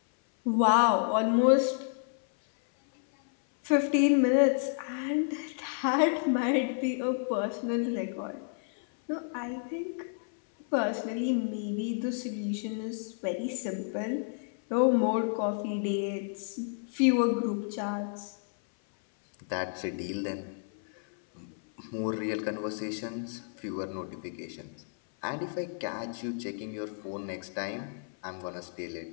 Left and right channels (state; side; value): silent; right; 57 dB below the other